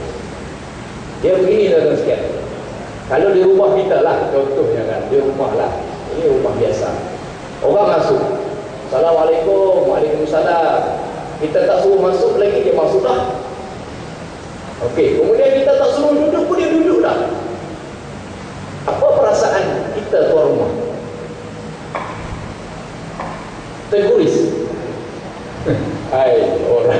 Dia begini tuan-tuan sekalian. Kalau di rumah kita lah, contohnya kan, di rumah lah, ini rumah biasa. Orang masuk, Assalamualaikum, Waalaikumsalam. Kita tak suruh masuk lagi, dia masuk dah. Okey, kemudian kita tak suruh duduk pun dia duduk dah. Apa perasaan kita tuan rumah? Terguris. Hai,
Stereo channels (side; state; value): both; identical; correlation 1.00